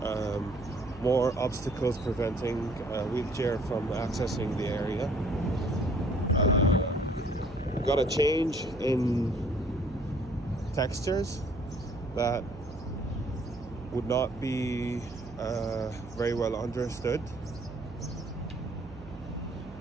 more obstacles preventing a wheelchair from accessing the area. We've got a change in textures that would not be very well understood.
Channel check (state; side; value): noise; right; hum, 16 dB below the sound